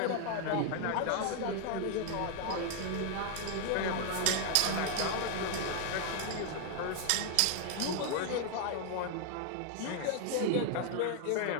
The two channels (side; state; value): both; different; correlation 0.00